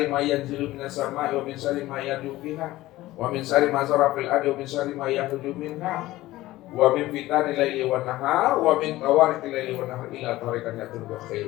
ma yanzilu minas sama'i wa min sari ma yad'u fiha wa min sari ma zara fil ardi wa min sari ma yakhruju minha wa min fitani laili wan nahar wa min tawariqil laili wan nahar ila tariqan yatul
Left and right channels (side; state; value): right; quieter; 17.0 dB